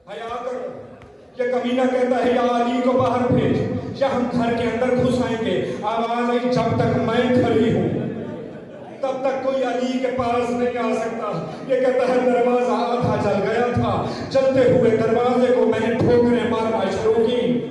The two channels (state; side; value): identical; both; correlation 1.00